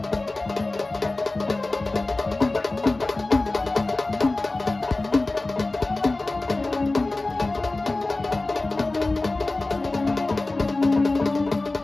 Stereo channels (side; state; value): right; quieter; 3.1 dB